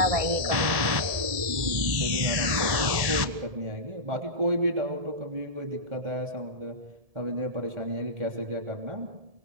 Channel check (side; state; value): left; late; 1.7 ms